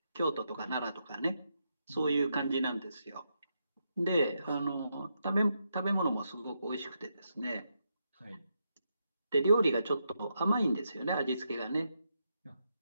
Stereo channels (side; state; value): both; inverted; correlation -0.82